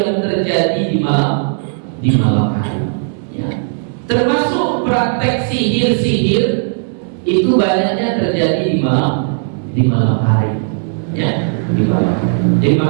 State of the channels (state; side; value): silent; left; 66 dB below the other